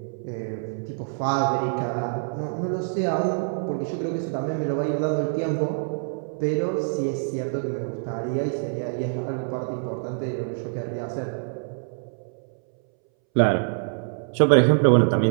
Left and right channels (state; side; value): silent; left; 61 dB below the other